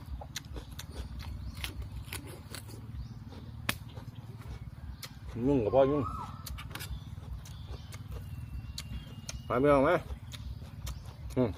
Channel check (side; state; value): both; identical; correlation 1.00